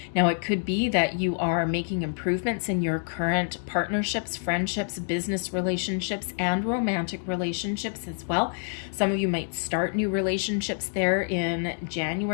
Now, it could be that you are making improvements in your current partnerships, friendships, business relationships, and romantic relationships as well. Some of you might start new relationships there in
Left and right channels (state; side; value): silent; right; digital silence